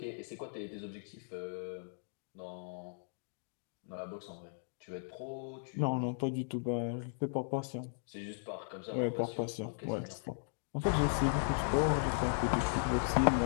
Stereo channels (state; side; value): silent; right; digital silence